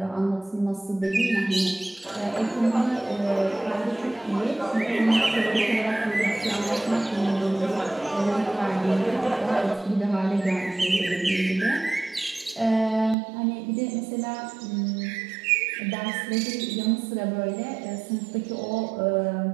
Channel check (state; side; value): drops out; left; at 13.2 s